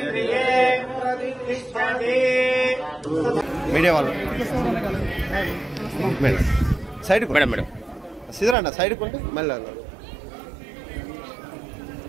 प्रतिष्ठति। मीडिया वालों साइड को मैडम सीधा ना साइड को मेल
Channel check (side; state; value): left; drops out; at 8.6 s